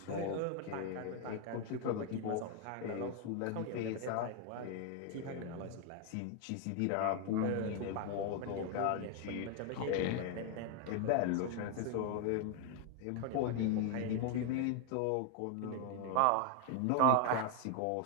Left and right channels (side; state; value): both; different; correlation 0.01